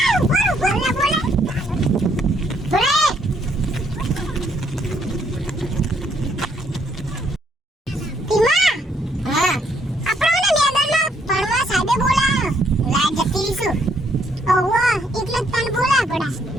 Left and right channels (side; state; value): both; normal; correlation 0.70